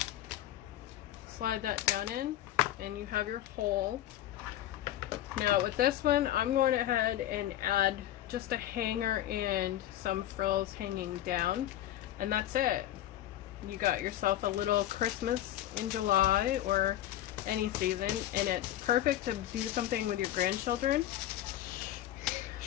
Slide that down in, and you have your hole. Now with this one, I'm going ahead and add just a hanger and some frills hanging down, and that's it. You got yourself a little Christmas in July or any season, and it's perfect to do something with your grandchildren.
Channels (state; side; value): quieter; right; 13.0 dB